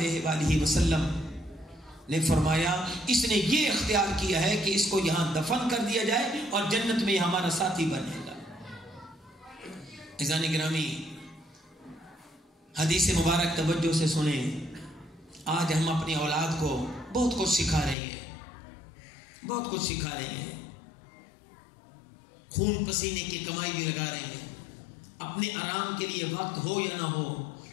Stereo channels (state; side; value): drops out; right; at 17.9 s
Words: وآلہ وسلم نے فرمایا اس نے یہ اختیار کیا ہے کہ اس کو یہاں دفن کر دیا جائے اور جنت میں ہمارا ساتھی بنے گا. عزیزان گرامی, حدیث مبارک توجہ سے سنیں. آج ہم اپنی اولاد کو بہت کچھ سکھا رہے ہیں, خون پسینے کی کمائی بھی لگا رہے ہیں. اپنے آرام کے لیے وقت ہو یا نہ ہو,